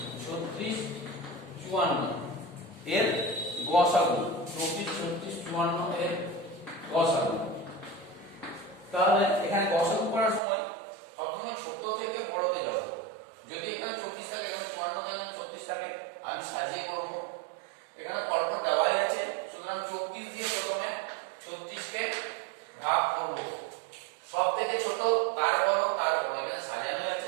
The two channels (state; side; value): drops out; left; at 10.4 s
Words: 36, 54 এর গসাগু, 24, 36, 54 এর গসাগু। তাহলে এখানে গসাগু করার সময় সবসময় ছোট থেকে বড়তে যাব। যদি এখানে 24 থাকে, এখানে 54 থাকে, এখানে 36 থাকে, আমি সাজিয়ে করব। এখানে পরপর দেওয়াই আছে, সুতরাং 24 দিয়ে প্রথমে 36 কে ভাগ করব। সব থেকে ছোট তার বড়, এখানে সাজানোই